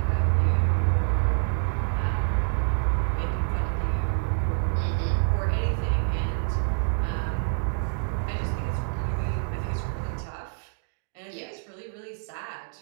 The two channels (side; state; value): left; silent; digital silence